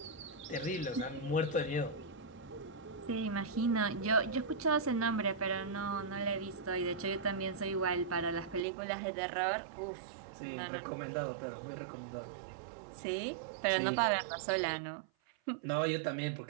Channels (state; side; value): drops out; left; at 8.6 s